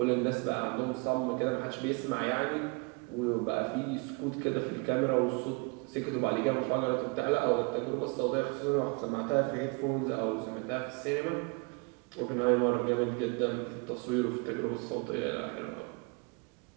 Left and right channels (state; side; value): quieter; left; 32.1 dB